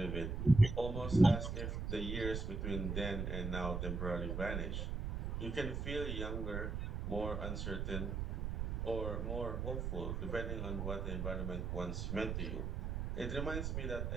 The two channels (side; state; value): right; noise; rumble, 2 dB below the sound